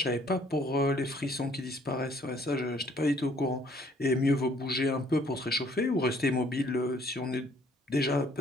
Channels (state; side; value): normal; both; correlation 0.62